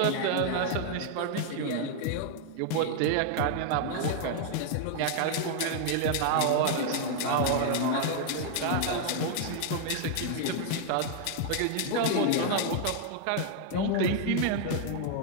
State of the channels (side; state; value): both; different; correlation 0.00